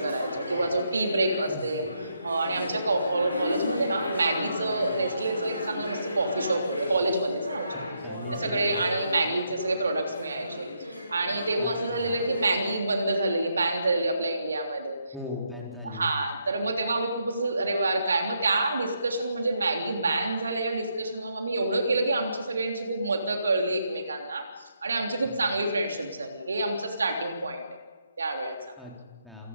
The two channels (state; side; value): inverted; both; correlation -0.78